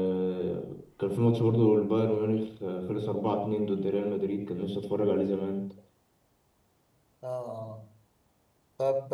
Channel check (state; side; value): identical; both; correlation 1.00